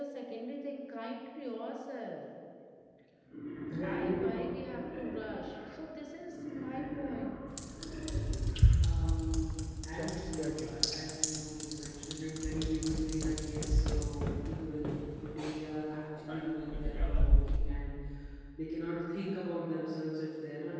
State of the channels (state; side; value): identical; both; correlation 1.00